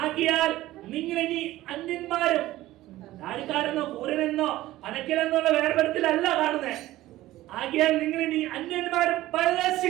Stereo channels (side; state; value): left; quieter; 16.0 dB